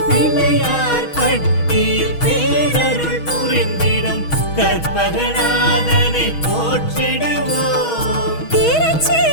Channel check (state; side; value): late; right; 6.3 ms